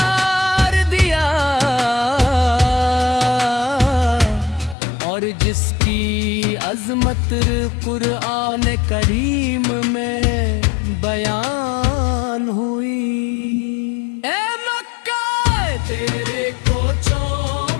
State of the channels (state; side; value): drops out; right; at 4.8 s